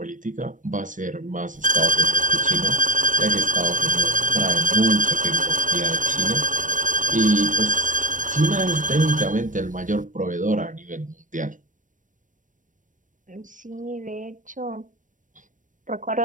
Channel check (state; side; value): late; left; 0.37 ms